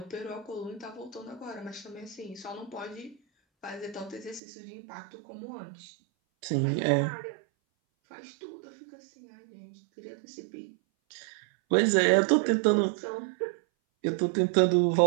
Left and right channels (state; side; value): drops out; left; at 4.4 s